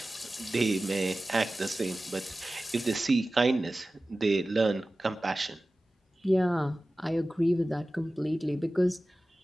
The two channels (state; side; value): normal; both; correlation 0.96